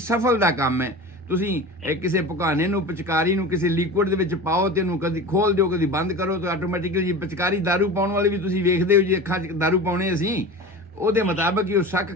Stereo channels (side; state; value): both; normal; correlation 0.32